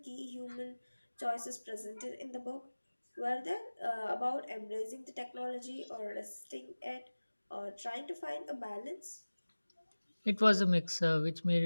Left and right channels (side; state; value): both; inverted; correlation -1.00